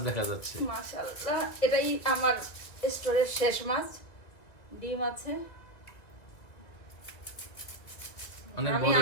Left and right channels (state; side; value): late; right; 2.3 ms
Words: দেখা যাচ্ছে। মাশাআল্লাহ, এটাই আমার স্টোরের শেষ মাছ। ডিম আছে,